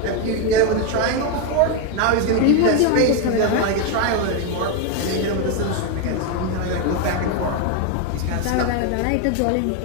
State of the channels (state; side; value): different; both; correlation 0.02